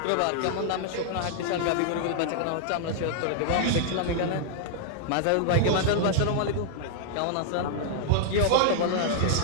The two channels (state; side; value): different; both; correlation -0.01